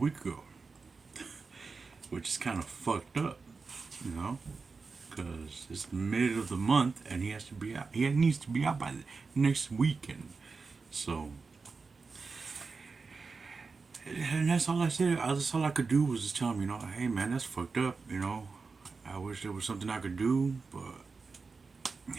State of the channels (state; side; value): quieter; left; 4.5 dB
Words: ago, which is kind of fucked up, you know, because it's mid of the month and he has to be out. He needs to be out by the next weekend. So, and that's all I said. That's all I could do was just tell him, hey man, that's fucked up. I wish there was something I could do, but